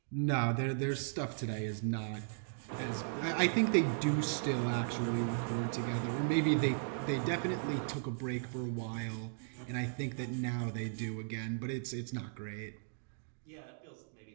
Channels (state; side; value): silent; left; digital silence